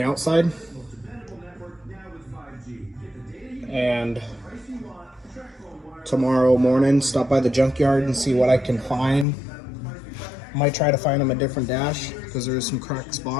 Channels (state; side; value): drops out; right; at 9.2 s